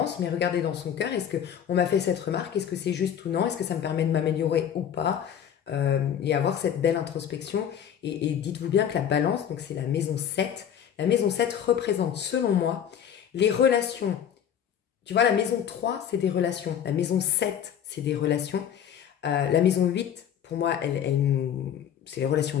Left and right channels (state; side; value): quieter; right; 9.0 dB